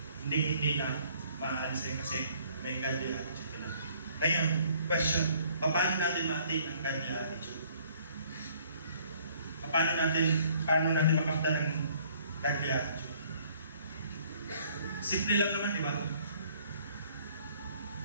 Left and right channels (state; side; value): inverted; both; correlation -0.60